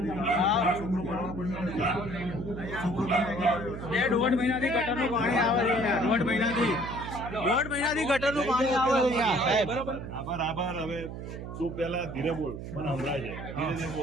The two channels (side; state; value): right; noise; hum, 9 dB below the sound